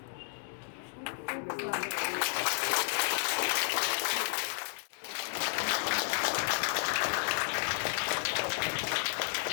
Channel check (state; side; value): silent; right; digital silence